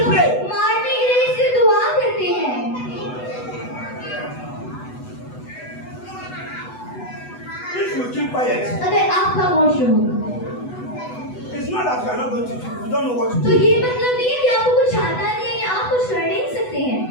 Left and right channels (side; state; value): right; late; 8.0 ms